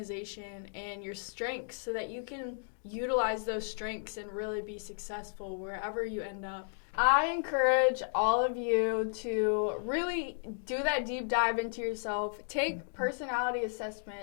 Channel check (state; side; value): silent; right; digital silence